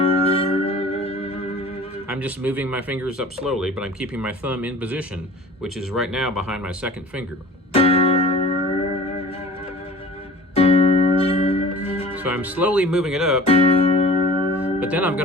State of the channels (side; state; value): both; normal; correlation 0.43